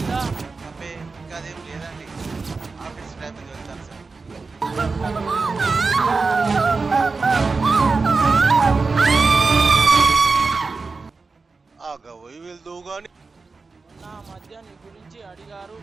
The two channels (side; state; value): left; quieter; 4.2 dB